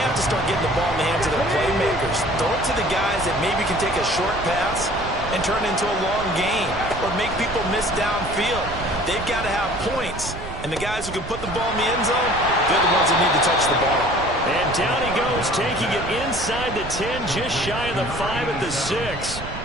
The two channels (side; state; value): right; noise; rumble, 10 dB below the sound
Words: have to start getting the ball in the hands of their playmakers. Throw it to the guys that maybe can take a short pass and turn it into a long gain or make people miss downfield. They've got to have points. And the guys who can put the ball in the end zone, they're the ones that need to touch the ball. And down he goes, taking it inside the 10, just shy of the 5 at the 6.